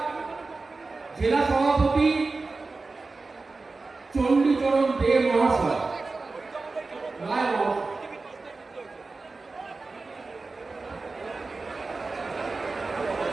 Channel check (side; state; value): left; quieter; 3.8 dB